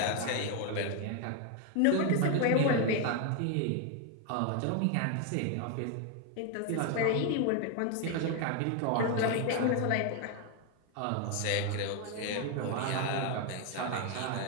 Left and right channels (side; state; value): both; different; correlation 0.01